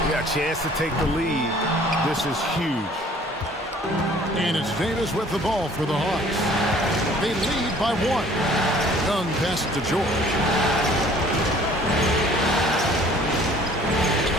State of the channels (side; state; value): both; normal; correlation 0.54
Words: Yeah, a chance to take the lead. This is huge. And it's Davis with the ball for the Hawks. They lead by 1. Young pass to George.